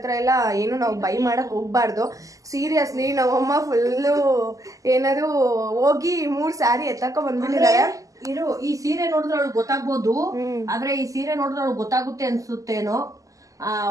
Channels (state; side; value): late; left; 0.16 ms